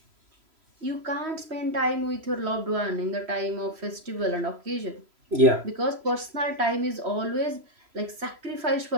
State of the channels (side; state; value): left; late; 3.0 ms